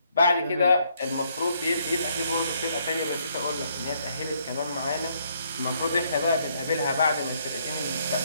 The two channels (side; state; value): both; inverted; correlation -0.70